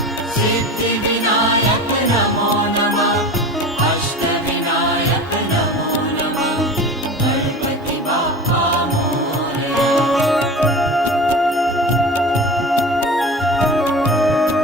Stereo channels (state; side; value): normal; both; correlation 0.33